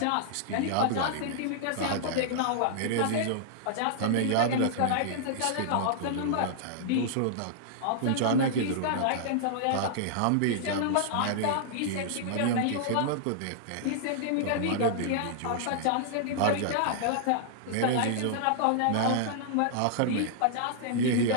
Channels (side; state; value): both; different; correlation -0.01